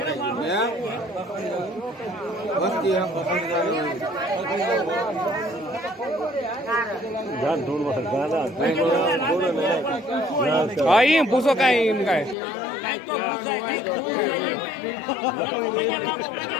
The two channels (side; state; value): right; drops out; at 12.4 s